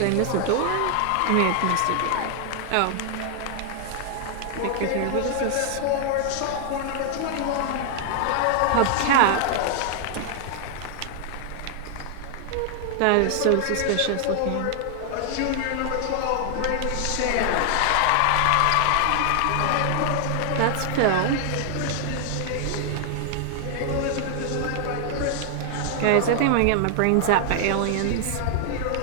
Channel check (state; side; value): different; both; correlation 0.00